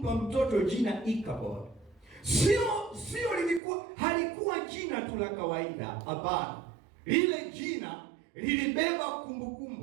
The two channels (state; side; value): drops out; left; at 3.6 s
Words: mtoto jina Ikabod? Halikuwa jina tu la kawaida, hapana. Lile jina lilibeba